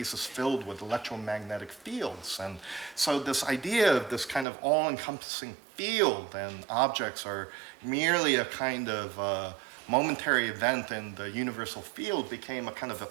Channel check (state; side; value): drops out; left; at 4.5 s